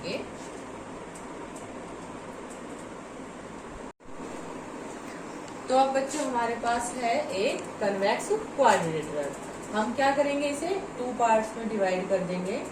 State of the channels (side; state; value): both; identical; correlation 1.00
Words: तो अब बच्चों हमारे पास है एक कन्वेक्स क्वाड्रिलेटरल। हम क्या करेंगे, इसे 2 पार्ट्स में डिवाइड कर देंगे,